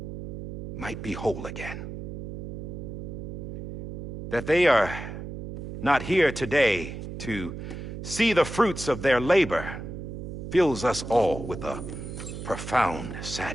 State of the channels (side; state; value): right; noise; hum, 8 dB below the sound